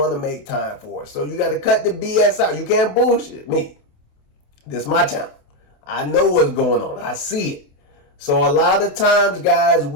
to make time for. So you got to cut the BS out. You can't bullshit me. This is my channel. I know what's going on. I see it. So a lot of times, guys,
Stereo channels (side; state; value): right; late; 28 ms